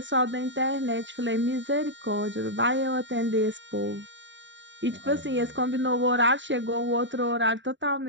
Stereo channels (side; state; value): left; late; 0.54 ms